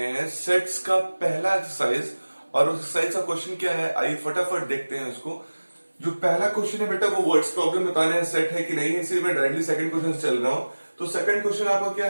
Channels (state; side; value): inverted; both; correlation -1.00